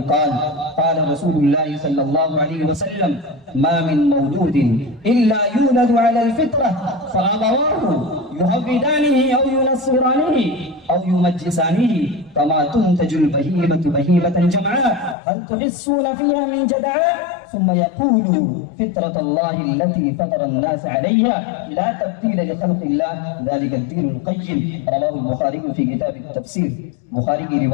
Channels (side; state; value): right; drops out; at 15.2 s